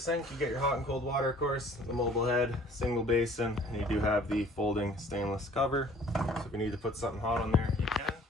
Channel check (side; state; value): both; normal; correlation 0.53